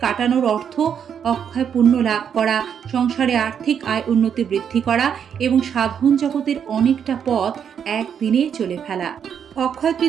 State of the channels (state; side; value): quieter; left; 7.9 dB